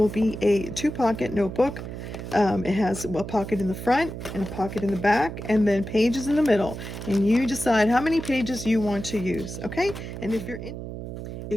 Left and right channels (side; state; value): right; noise; hum, 8 dB below the sound